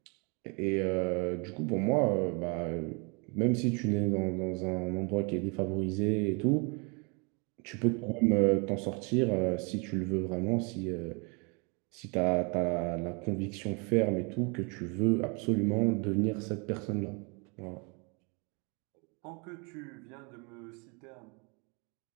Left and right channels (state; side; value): quieter; left; 32.7 dB